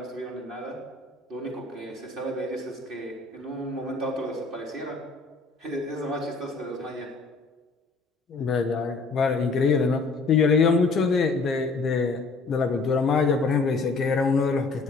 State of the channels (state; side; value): quieter; right; 3.9 dB